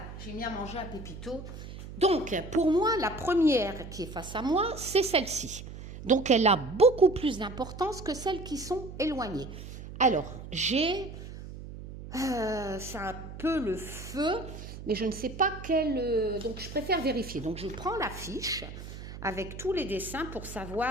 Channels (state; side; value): noise; right; hum, 12 dB below the sound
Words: j'ai mis à manger à Pépito. Donc, pour moi, la première qui est face à moi, c'est celle-ci. Donc, elle a beaucoup plus d'importance que celles qui sont éloignées. Alors, j'ai... c'est un peu le feu, mais je ne sais pas quel... donc, je préfère vérifier. Donc, je prends la fiche avec tous les dessins pour